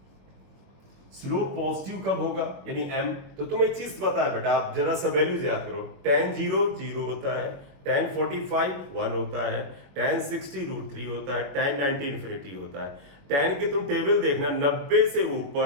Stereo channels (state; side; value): late; left; 21 ms